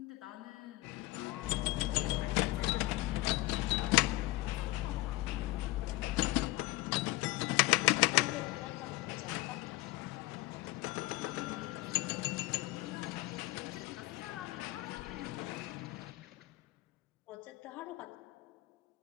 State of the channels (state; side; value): quieter; right; 20.2 dB